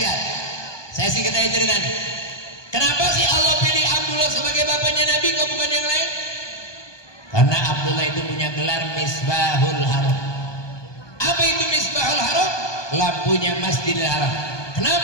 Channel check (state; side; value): late; right; 1.2 ms